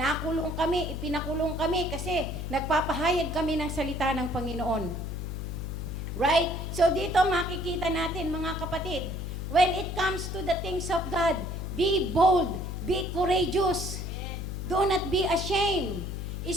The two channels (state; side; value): noise; left; hum, 5 dB below the sound